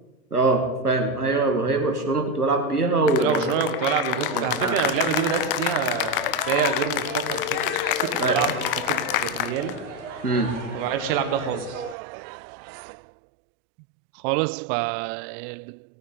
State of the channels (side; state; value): left; drops out; at 12.0 s